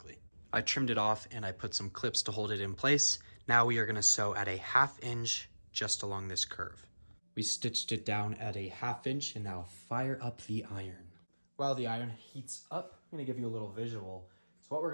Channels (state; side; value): inverted; both; correlation -1.00